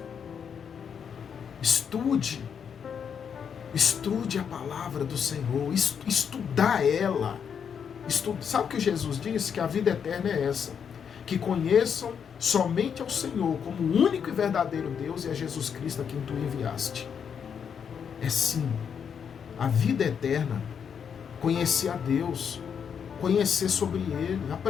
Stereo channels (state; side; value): quieter; right; 7.3 dB